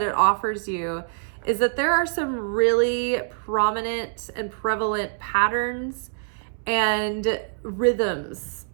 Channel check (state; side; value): silent; left; 62 dB below the other